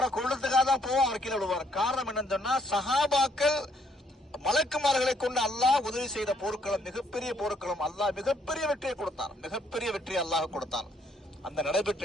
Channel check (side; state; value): both; normal; correlation 0.69